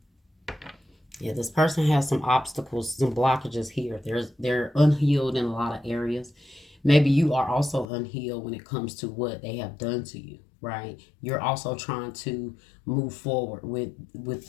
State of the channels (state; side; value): drops out; right; at 7.9 s